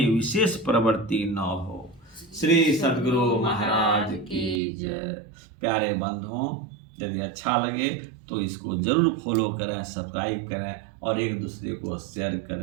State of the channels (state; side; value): drops out; left; at 4.6 s